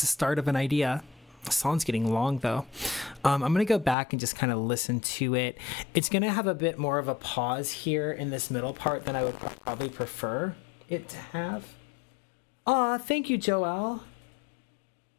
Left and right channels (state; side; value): drops out; right; at 4.0 s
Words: a start of an idea. The song's getting long though. I'm gonna go back and just kind of listen to it. It's gonna have a bit more of a pause here in this middle part than I would probably prefer it to have. Aw, thank you, Joelle.